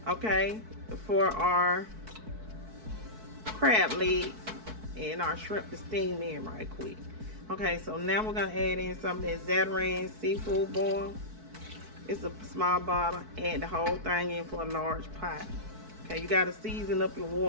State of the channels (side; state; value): left; late; 4.6 ms